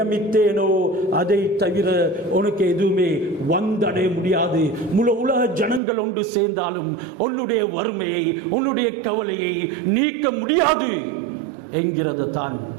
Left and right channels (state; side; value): drops out; left; at 5.8 s